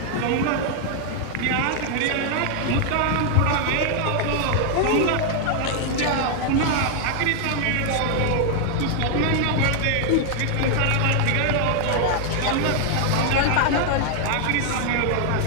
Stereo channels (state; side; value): different; both; correlation 0.00